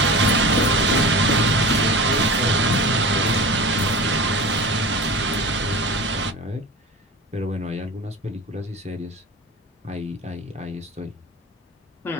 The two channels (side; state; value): both; normal; correlation 0.32